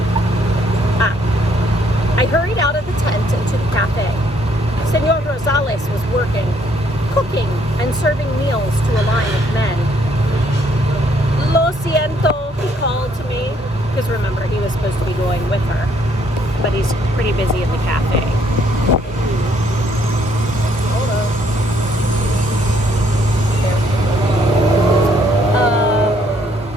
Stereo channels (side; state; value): both; normal; correlation 0.67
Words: I hurried out of the tent and to the cafe. Senor Rosales was working, cooking and serving meals to a line of men. "Lo siento," he called to me, because remember, he was supposed to be going with her, but he's pretty busy in the cafe.